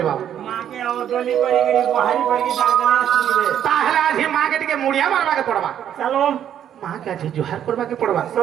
बाबू मां के और डोली करी करी बहारी पड़ के दागना सुनबे ताहला जी मां के टिके मुड़िया मारबा के पड़बा चलो मां के आज जोहार करबा के पड़बा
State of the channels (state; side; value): quieter; left; 9.9 dB